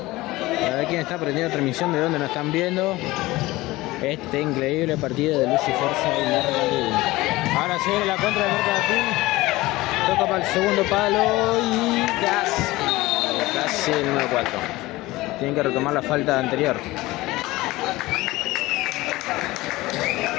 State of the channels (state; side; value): quieter; right; 19.3 dB